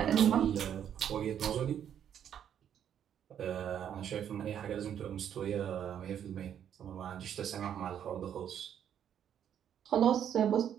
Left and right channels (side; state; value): left; quieter; 9.4 dB